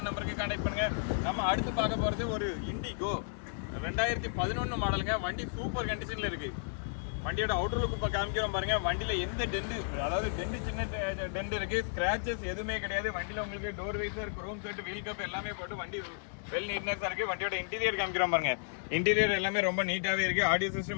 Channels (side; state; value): right; silent; digital silence